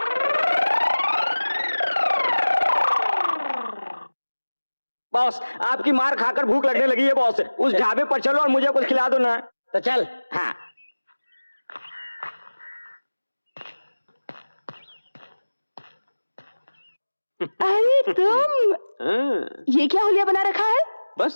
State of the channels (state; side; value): inverted; both; correlation -1.00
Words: बॉस आपकी मार खाकर भूख लगने लगी है बॉस, उस ढाबे पर चलो और मुझे कुछ खिला दो ना। तो चल। हाँ। अरे तुम, हाँ, ये क्या हुलिया बना रखा है?